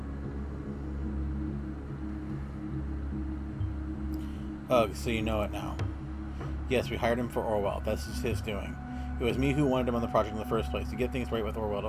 Ugh, so you know it now. Yes, we hired him for Orwell. This is his doing. It was me who wanted him on the project in the first place, to get things right with Orwell, to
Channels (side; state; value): both; identical; correlation 1.00